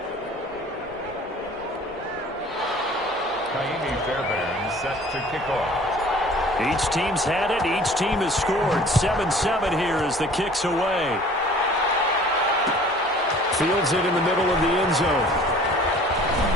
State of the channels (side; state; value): both; normal; correlation 0.49